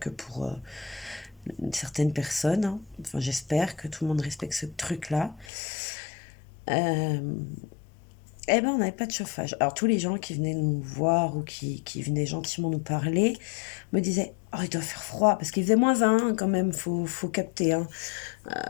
pour certaines personnes, hein. Enfin, j'espère que tout le monde respecte ce truc-là. On n'avait pas de chauffage. Alors, tous les gens qui venaient nous voir ou qui venaient gentiment nous parler me disaient « Oh, il doit faire froid » parce qu'il faisait -1 quand même, faut capter. Hein.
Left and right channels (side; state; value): right; drops out; at 5.5 s